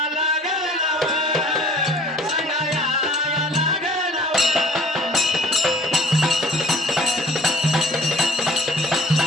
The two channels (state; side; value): normal; both; correlation 0.51